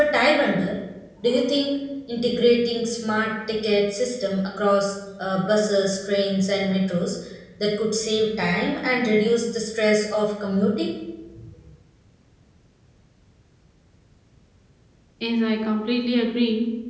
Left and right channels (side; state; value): both; identical; correlation 1.00